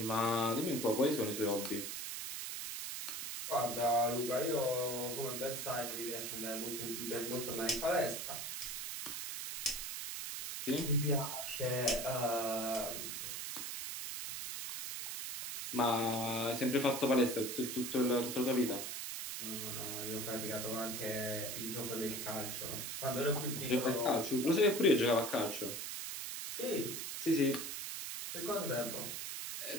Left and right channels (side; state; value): right; noise; hiss, 5 dB below the sound